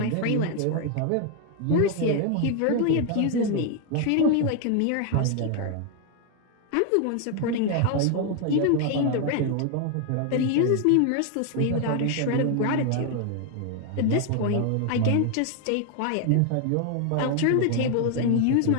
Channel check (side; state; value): both; different; correlation 0.00